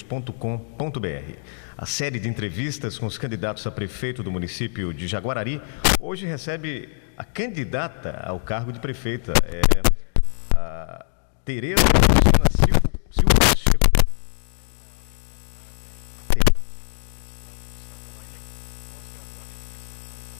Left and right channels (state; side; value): silent; right; digital silence